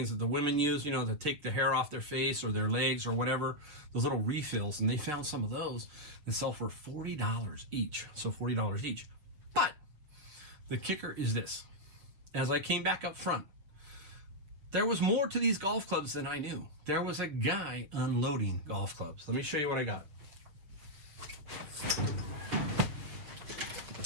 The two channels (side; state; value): left; late; 7.0 ms